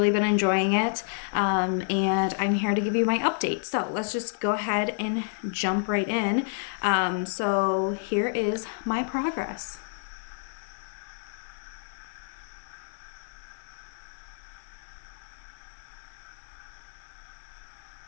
been enjoying it, and I'm here to give you my update. So let's just go ahead and jump right in. So here is my progress.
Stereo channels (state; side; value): silent; right; 58 dB below the other